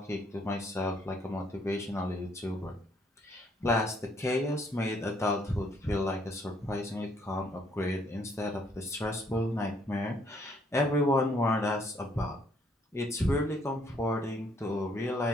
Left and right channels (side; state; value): both; normal; correlation 0.67